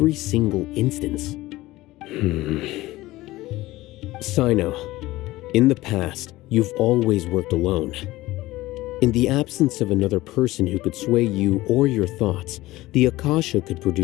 single instance? Sino, in the past, you've always worked alone. In the absence of another person who could sway you or your thoughts, the Akasha could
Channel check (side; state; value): right; quieter; 18.0 dB